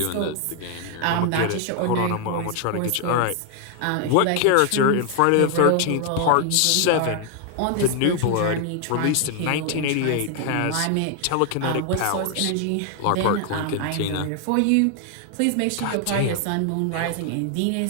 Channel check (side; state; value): both; different; correlation 0.00